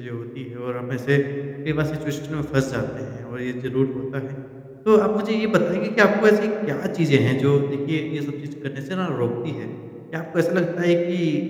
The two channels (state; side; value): identical; both; correlation 1.00